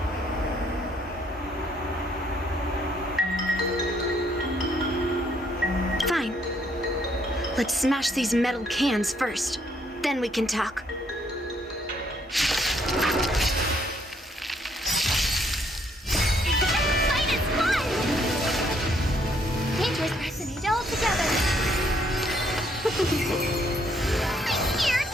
Fine. Let's smash these metal cans first. Then we can talk. Fight is fun! Dangerous personage all together. I'm here.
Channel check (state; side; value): normal; both; correlation 0.69